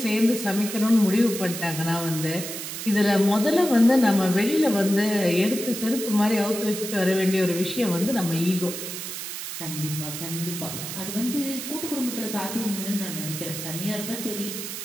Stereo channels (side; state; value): right; noise; hiss, 7 dB below the sound